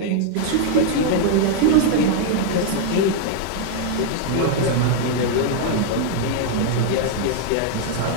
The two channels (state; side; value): different; both; correlation 0.00